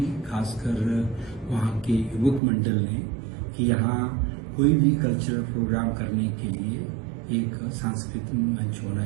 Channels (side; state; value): left; drops out; at 2.4 s